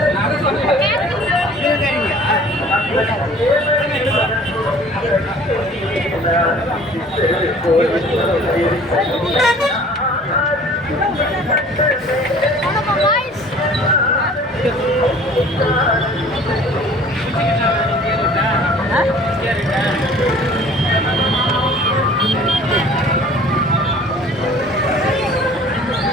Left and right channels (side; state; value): both; normal; correlation 0.49